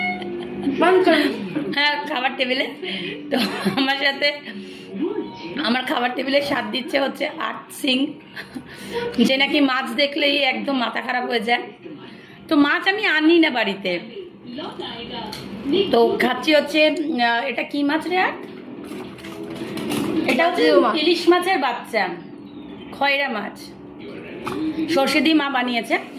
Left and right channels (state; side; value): identical; both; correlation 1.00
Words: হ্যাঁ, খাবার টেবিলে। তো আমার সাথে আমার খাবার টেবিলে স্বাদ দিচ্ছে হচ্ছে আর্ট সিং, যে নাকি মাছ দেখলেই একদম মাথা খারাপ হয়ে যায়। তো মাছ আমি আনি না বাড়িতে, তো খাচ্ছি হচ্ছে এটা কি মাছ রে? আর এটা হচ্ছে ইলিশ মাছের বাচ্চা, খয়রা মাছ, সর্ষে দিয়ে মা বানিয়েছে।